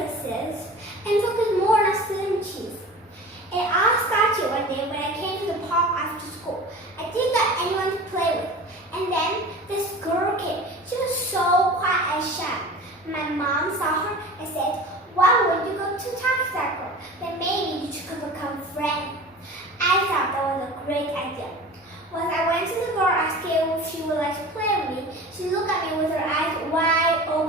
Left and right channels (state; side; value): normal; both; correlation 0.37